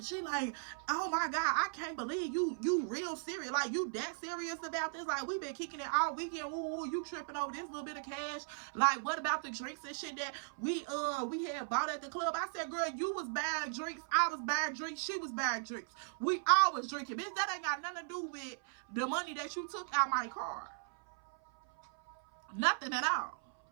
she like, oh my God, I can't believe you real serious. Like, you that serious about this? Like, we been kicking it all weekend. Woo, you tripping over this little bit of cash. Like, what about the drinks and shit that we had bought at the club? I said, girl, you was buying drinks, I was buying drinks, she was buying drinks. We all was drinking. Bitch, that ain't got nothing to do with the money that you took out my car. Nothing at all.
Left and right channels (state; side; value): silent; left; 53 dB below the other